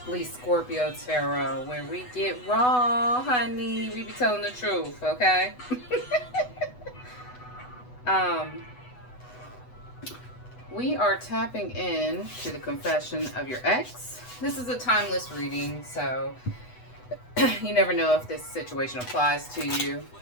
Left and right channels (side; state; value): right; late; 8.1 ms